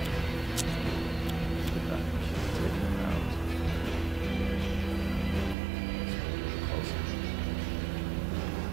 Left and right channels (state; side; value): drops out; left; at 5.6 s